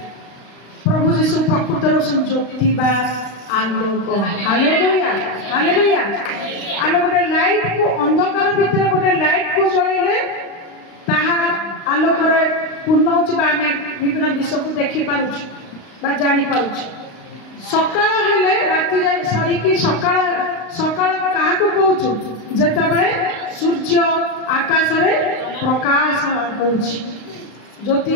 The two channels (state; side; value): late; right; 35 ms